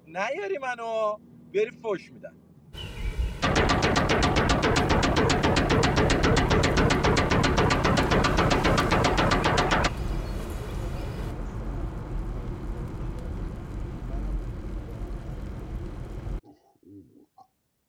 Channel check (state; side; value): identical; both; correlation 1.00